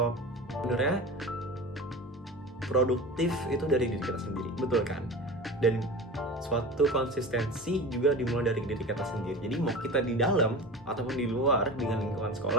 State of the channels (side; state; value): both; normal; correlation 0.32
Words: sebenarnya produktif itu dari diri kita sendiri, betul kan? Dan suatu konsistensi juga dimulai dari diri kita sendiri. Jadi mau kita di dalam ataupun di luar dengan lingkungan